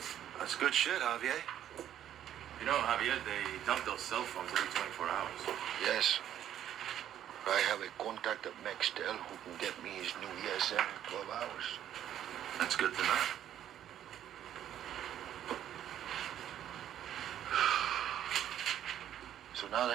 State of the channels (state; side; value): quieter; left; 10.9 dB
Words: That's good shit, Javier. You know, Javier, they dump those cell phones every 24 hours. Yes. I have a contact at Nextel who can get me his new ESM in 12 hours. That's good to know. So now